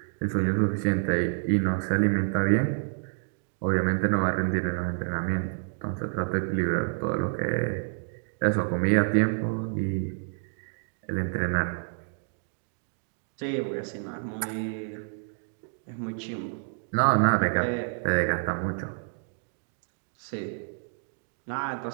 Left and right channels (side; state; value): left; silent; digital silence